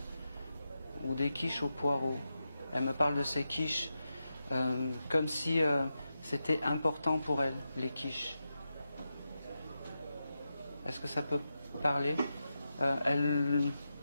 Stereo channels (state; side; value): inverted; both; correlation -0.89